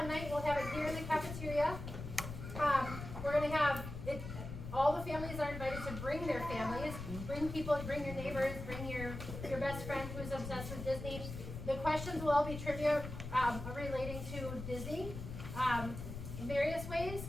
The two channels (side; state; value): left; noise; rumble, 8 dB below the sound